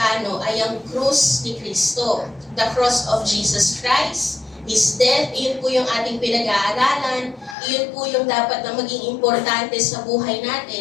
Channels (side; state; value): right; drops out; at 7.6 s